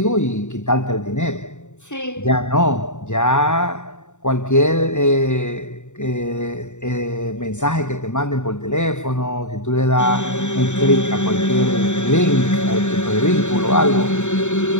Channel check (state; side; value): late; right; 0.84 ms